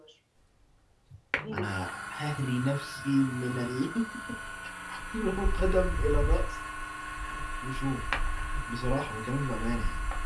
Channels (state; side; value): identical; both; correlation 1.00